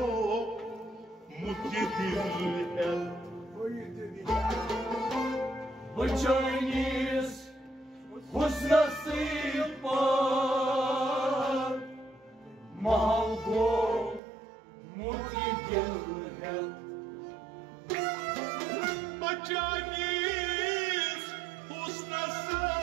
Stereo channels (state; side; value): drops out; left; at 14.2 s